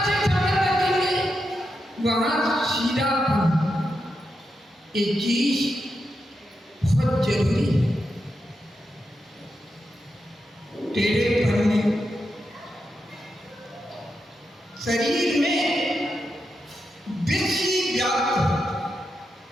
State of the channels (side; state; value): both; normal; correlation 0.86